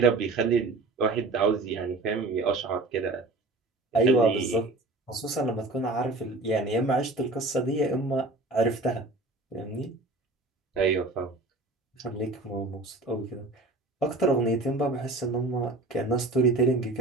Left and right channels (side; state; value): left; quieter; 3.1 dB